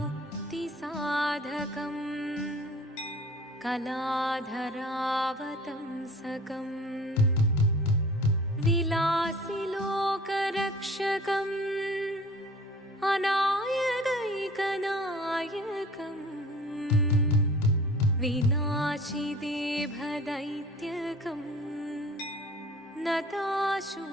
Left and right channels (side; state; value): both; normal; correlation 0.45